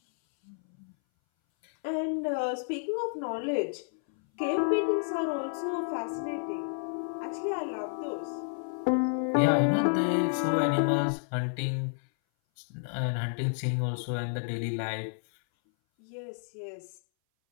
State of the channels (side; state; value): right; silent; 58 dB below the other